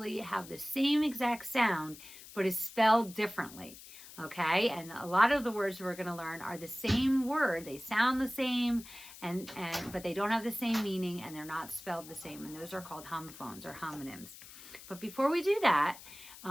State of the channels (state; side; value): noise; left; hiss, 17 dB below the sound